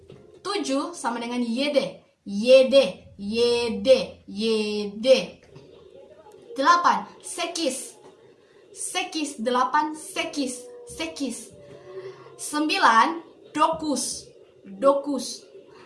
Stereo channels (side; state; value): both; identical; correlation 1.00